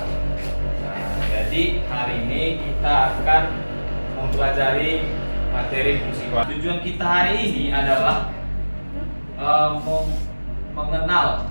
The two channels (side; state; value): both; inverted; correlation -1.00